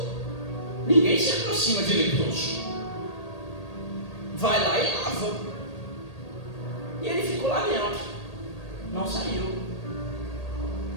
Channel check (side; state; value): right; late; 1.8 ms